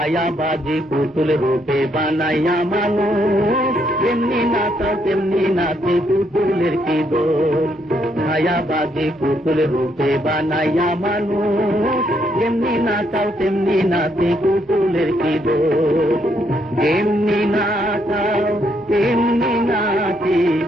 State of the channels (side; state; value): both; normal; correlation 0.74